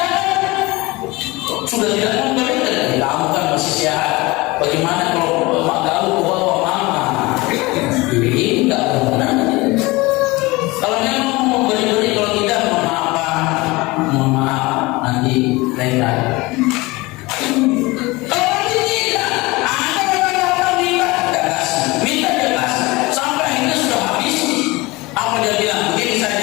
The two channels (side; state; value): right; quieter; 22.4 dB